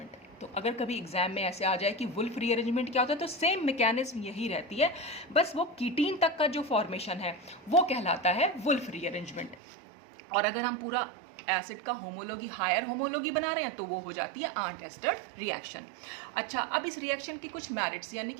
तो अगर कभी एग्जाम में ऐसे आ जाए कि वुल्फ रीअरेंजमेंट क्या होता है, तो सेम मैकेनिज्म यही रहती है, बस वो कीटीन तक का जो फॉर्मेशन है वो कहलाता है वुल्फ रीअरेंजमेंट। और अगर हम पूरा एसिड का होमोलॉगी हायर होमोलॉगी बना रहे हैं तो वो हो जाती है आंट एस्टर रिएक्शन। अच्छा, अब इस रिएक्शन की कुछ मेरिट्स यानी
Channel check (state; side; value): drops out; left; at 9.6 s